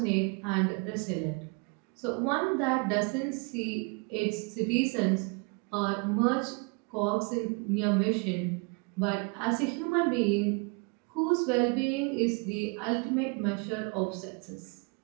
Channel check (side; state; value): left; quieter; 32.6 dB